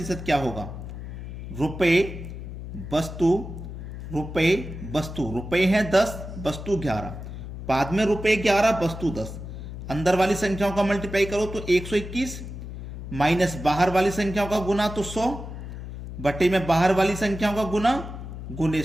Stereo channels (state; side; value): noise; left; hum, 9 dB below the sound